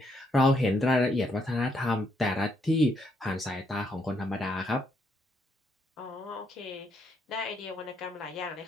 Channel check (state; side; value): normal; both; correlation 0.74